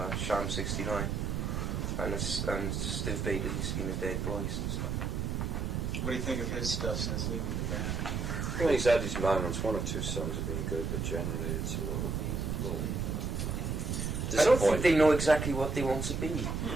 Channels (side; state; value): right; noise; rumble, 1 dB below the sound